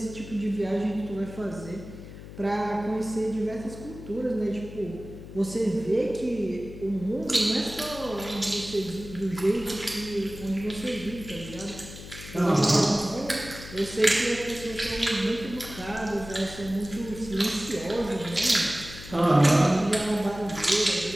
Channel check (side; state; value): left; noise; hum, 14 dB below the sound